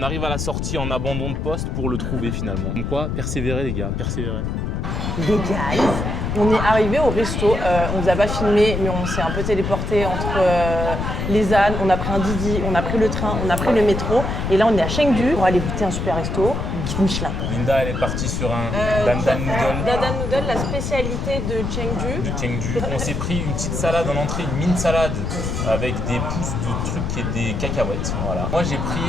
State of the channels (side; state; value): left; noise; rumble, 2 dB below the sound